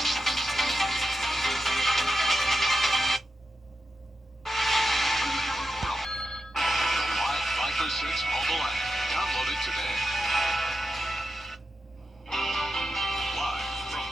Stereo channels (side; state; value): both; normal; correlation 0.89